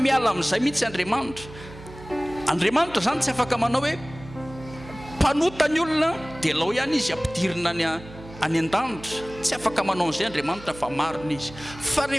miala amin'izay mihitsy Andriamanitra. Andriamanitra zany tsy afaka manao hoe mpanota ny olona dia lao ihany izy ampidirina any an-danitra. Tsy afaka manao an'izay Andriamanitra fa marina izy. Fa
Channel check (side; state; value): right; noise; hum, 17 dB below the sound